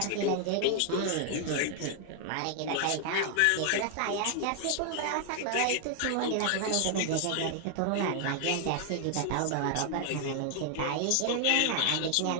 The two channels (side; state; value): both; different; correlation 0.00